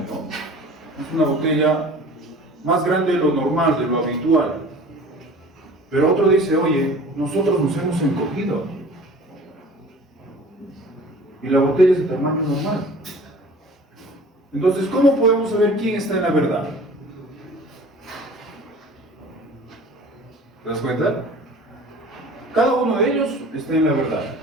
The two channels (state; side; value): normal; both; correlation 0.44